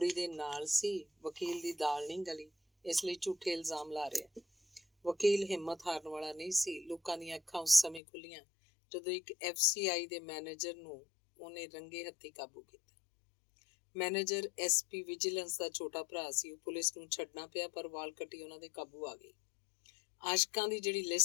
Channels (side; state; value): right; drops out; at 8.0 s